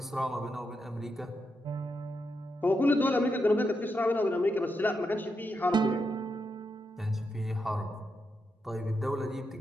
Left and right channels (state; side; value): normal; both; correlation 0.84